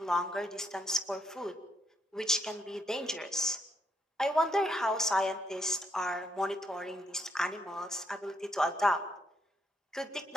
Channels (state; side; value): normal; both; correlation 0.76